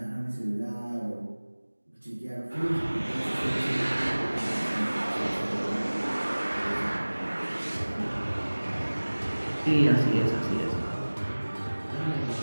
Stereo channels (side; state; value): both; inverted; correlation -1.00